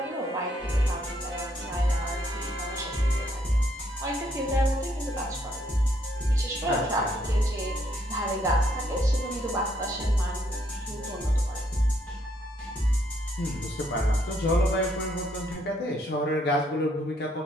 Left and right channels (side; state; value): both; normal; correlation 0.71